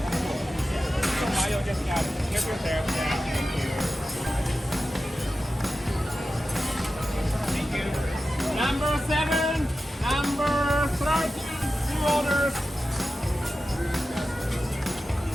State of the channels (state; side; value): normal; both; correlation 0.93